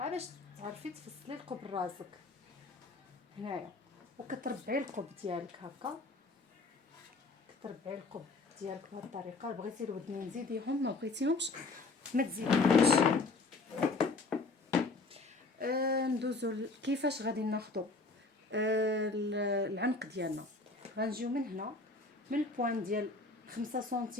تعرفي تفصلي القب راسك هنايا. وكتربعي القب ديالك هكا، كتربعي القب ديالك بهذه الطريقه. بغيتي الودنين زيديهم، ما بغيتيهمش ما تزيديهمش. ندوزو كيفاش غادي ناخذوا العنق ديالنا. غنجيو من هنا من البوان ديال 5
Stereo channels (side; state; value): right; quieter; 3.5 dB